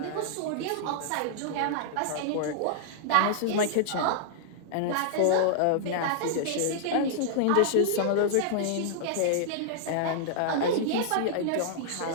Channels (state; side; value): different; both; correlation -0.01